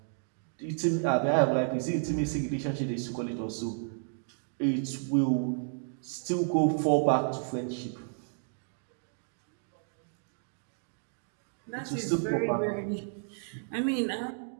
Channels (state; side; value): silent; left; digital silence